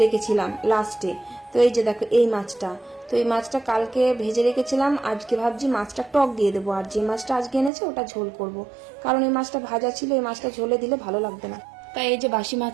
রেখেছিলাম লাস্টে। তো এই যে দেখো এই মাছটা, তো এই মাছটা কালকে ভেজে রেখেছিলাম, আজকে ভাবছি মাছটা টক দিয়ে দেবো, আর যে মাছটা আজকে এনেছে ওটা ঝোল করব, কারণ এই মাছটা ভাজা ছিল, এই মাছটা ঝোলে দিলে ভালো লাগবে না। তাই এই যে বাসি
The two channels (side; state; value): left; drops out; at 7.7 s